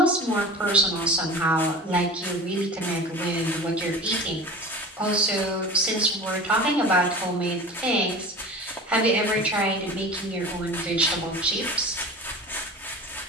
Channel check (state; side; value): normal; both; correlation 0.36